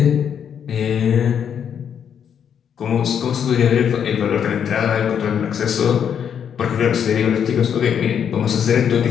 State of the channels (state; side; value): quieter; right; 8.2 dB